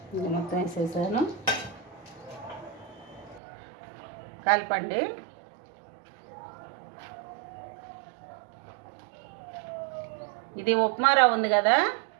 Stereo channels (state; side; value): drops out; left; at 3.4 s